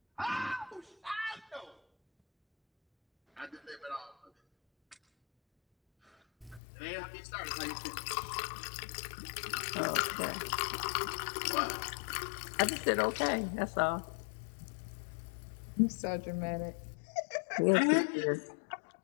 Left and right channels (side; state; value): right; drops out; at 6.6 s